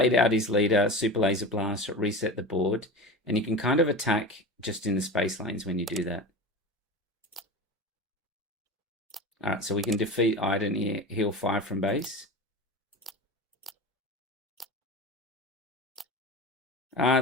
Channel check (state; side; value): normal; both; correlation 0.29